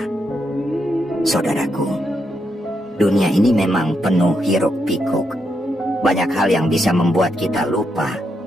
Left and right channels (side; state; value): both; normal; correlation 0.81